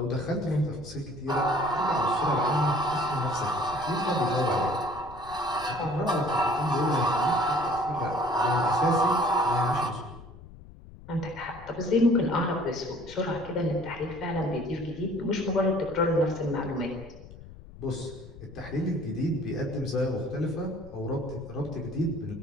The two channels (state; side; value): noise; left; rumble, 18 dB below the sound